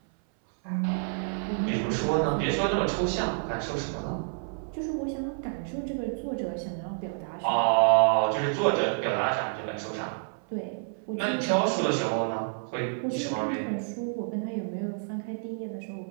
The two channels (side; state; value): left; silent; 59 dB below the other